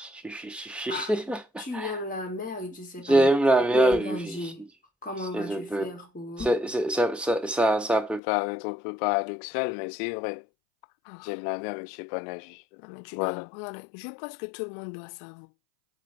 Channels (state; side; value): drops out; right; at 8.2 s